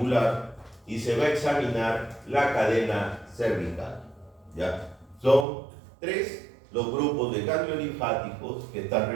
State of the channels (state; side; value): drops out; left; at 5.5 s